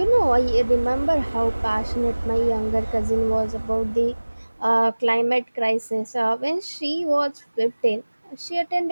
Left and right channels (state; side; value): inverted; both; correlation -1.00